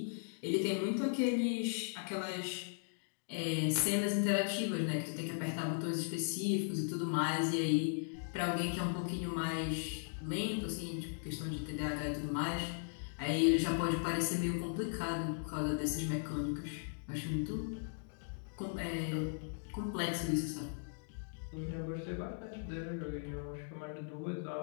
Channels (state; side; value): silent; right; digital silence